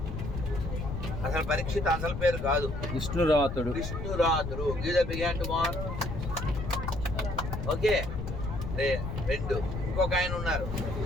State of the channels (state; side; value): noise; left; rumble, 5 dB below the sound